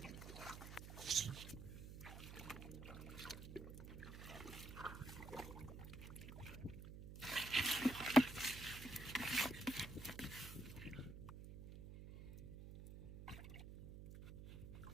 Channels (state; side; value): noise; right; hum, 10 dB below the sound